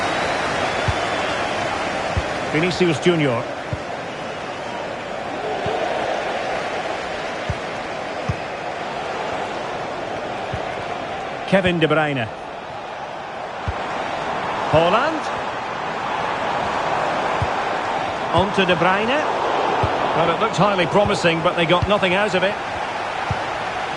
Vinicius Junior. Kevin De Bruyne. Holland. On to De Bruyne. Well, it looked highly promising, but they got nothing out of it.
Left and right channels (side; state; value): both; identical; correlation 1.00